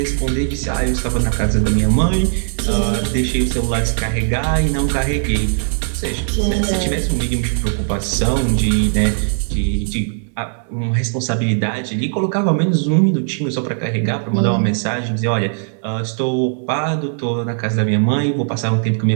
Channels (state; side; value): silent; left; 67 dB below the other